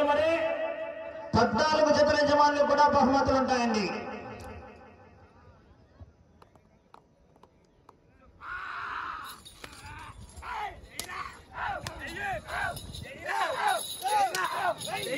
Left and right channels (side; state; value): both; identical; correlation 1.00